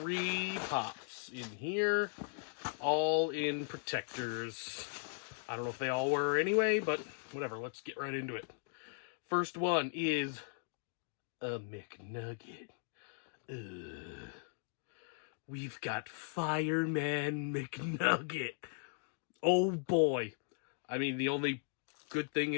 pops in here, all in protectors. I don't know if they all were anyway, but whatever, let's get right into it. First one is a McNugget. We've got Fireman McNugget. Oh boy. I mean, the only good thing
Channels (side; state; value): right; silent; digital silence